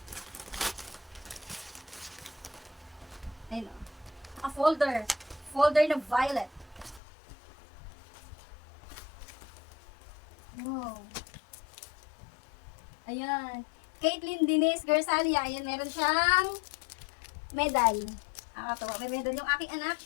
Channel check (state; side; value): drops out; right; at 7.0 s